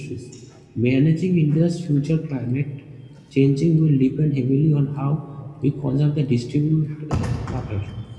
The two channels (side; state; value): both; identical; correlation 1.00